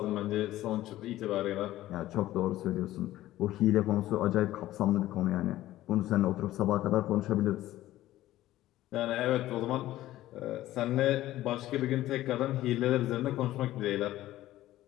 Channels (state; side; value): quieter; right; 15.0 dB